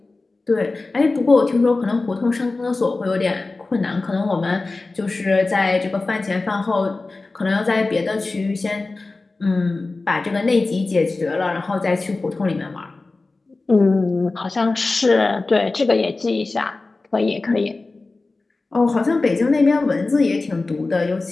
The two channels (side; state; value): right; quieter; 3.5 dB